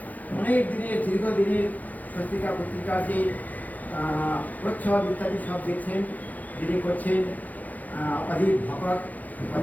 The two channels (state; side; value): late; right; 0.080 ms